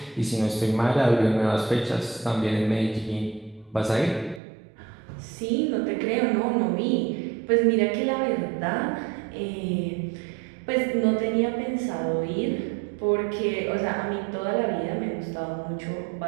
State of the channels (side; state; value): left; drops out; at 4.4 s